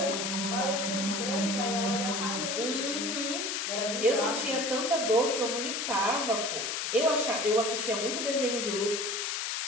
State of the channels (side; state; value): left; noise; hiss, 1 dB below the sound